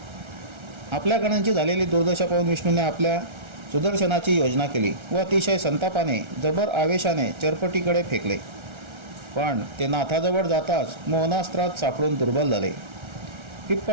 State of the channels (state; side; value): late; left; 1.3 ms